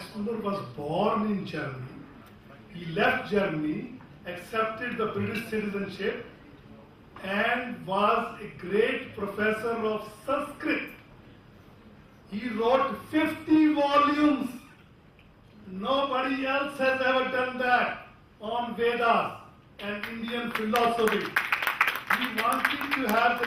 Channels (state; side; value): identical; both; correlation 1.00